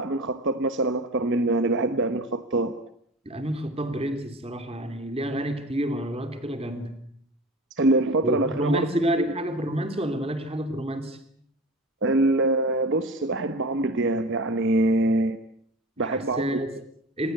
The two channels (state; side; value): normal; both; correlation 0.34